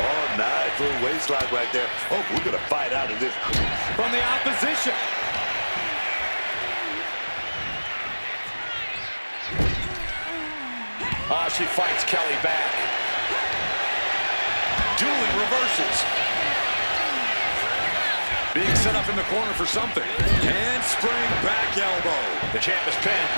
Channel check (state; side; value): inverted; both; correlation -1.00